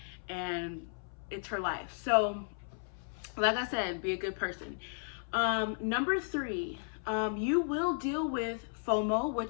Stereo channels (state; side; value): silent; right; 55 dB below the other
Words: and it's her life. So like I said, be a good person. Number 3, you will deal with FOMO,